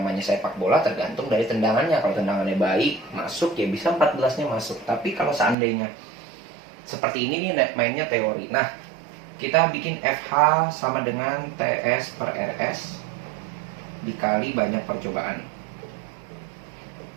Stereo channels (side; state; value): left; drops out; at 5.6 s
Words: sepak bola tergantung dari tendangannya. Kalau tendangannya baik, masuk ya bisa 14-nya masuk. Tapi kalau seandainya seperti ini nih mainnya teori. Nah, kita bikin FH sama dengan TS per RS dikali banyak percobaan.